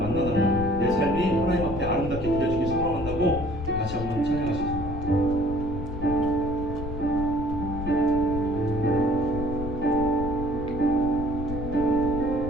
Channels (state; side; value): noise; left; rumble, 7 dB below the sound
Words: 내 삶이 하나님 앞에 아름답게 그려지길 소망한다고 같이 한번 찬양하시겠습니다.